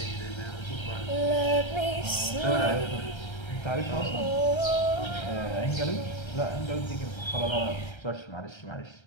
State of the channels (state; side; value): late; right; 1.3 ms